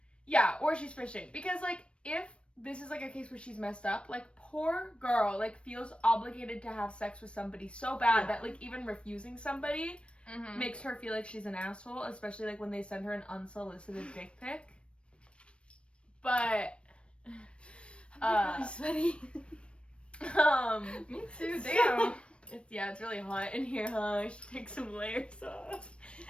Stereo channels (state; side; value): late; right; 0.059 ms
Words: yeah, or she's fishing, because, like, if this is, like, a case where she's messed up, like, poor girl, like, feels obligated to have sex with somebody so bad that, like, even refusing somebody makes her feel like she's an asshole, especially, like, when they send her an unsolicited dick pic. But I'm really sweaty. Me too, damn. It's really hot in here, huh? I should take some layers off.